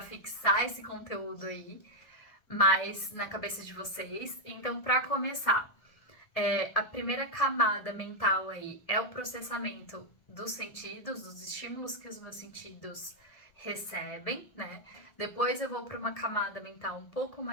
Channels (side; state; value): right; late; 1.8 ms